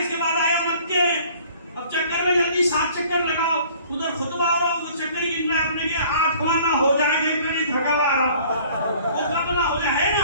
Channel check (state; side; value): inverted; both; correlation -0.53